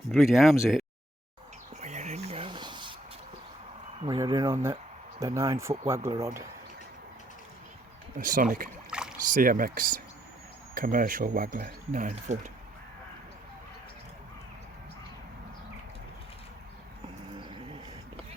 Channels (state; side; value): normal; both; correlation 0.71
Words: bloody arms it. We're in, guys. We're in on the 9-foot waggler rod. A Sonic CMX commercial waggler, 9 foot.